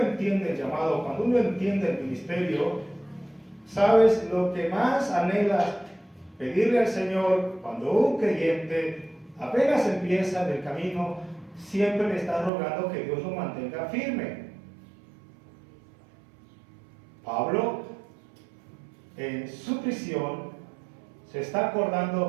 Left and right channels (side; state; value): left; drops out; at 12.5 s